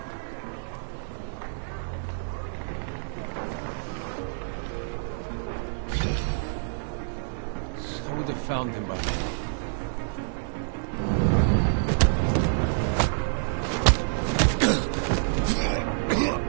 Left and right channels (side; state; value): left; silent; digital silence